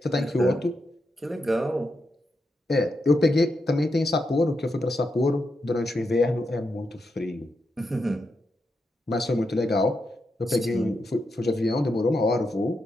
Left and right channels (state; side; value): normal; both; correlation 0.85